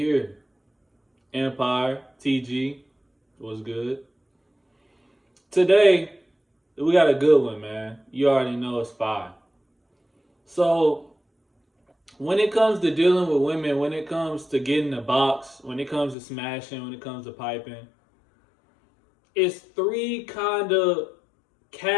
Empire TG was good. Today we got a good one, man. You already know it's fire. So when it comes to dealing with women, when it comes to getting the box, when it comes to smashing, when it comes to piping, it's three kind of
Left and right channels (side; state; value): right; drops out; at 16.2 s